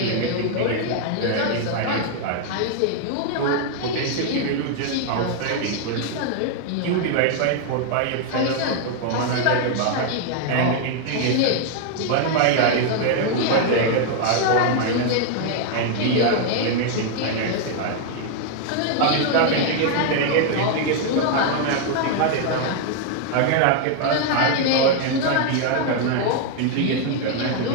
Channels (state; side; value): different; both; correlation 0.00